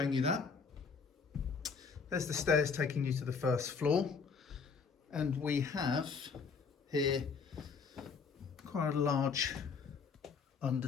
you that. There's the stairs taking you to the first floor. And we have here quite a large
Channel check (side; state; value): right; quieter; 5.4 dB